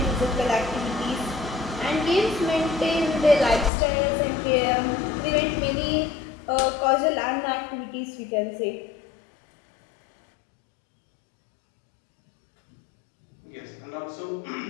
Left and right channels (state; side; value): drops out; right; at 3.7 s